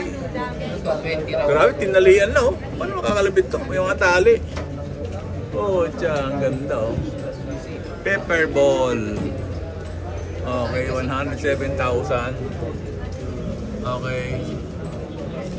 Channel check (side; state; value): both; identical; correlation 1.00